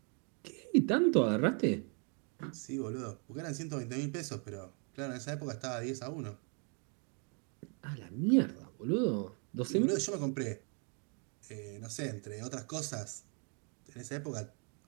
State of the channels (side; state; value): left; quieter; 38.4 dB